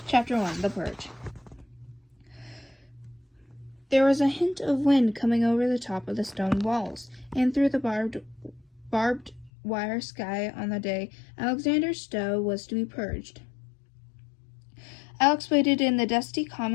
Chapter 1, The Purge. There was a hint of wind coming over the top of the stone walls, and through the barbed wire sky on the day Alexander Stowe was to be purged. Alex waited in the dusty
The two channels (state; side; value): drops out; right; at 9.5 s